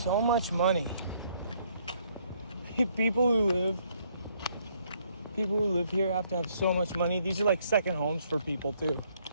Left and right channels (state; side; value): inverted; both; correlation -0.68